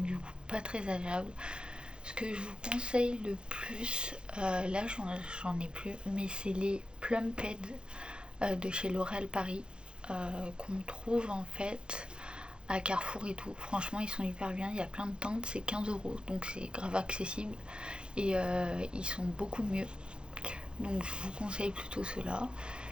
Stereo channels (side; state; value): left; late; 0.052 ms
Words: du coup, pas très agréable. Ce que je vous conseille le plus, là j'en ai plus, mais c'est les Plumped de chez L'Oréal Paris qu'on trouve en fait à Carrefour et tout. Franchement, ils sont hyper bien. Il y a plein de teintes, c'est 15 €, donc c'est grave accessible et ils sont beaucoup mieux. Donc je vous conseille plutôt ceux-là.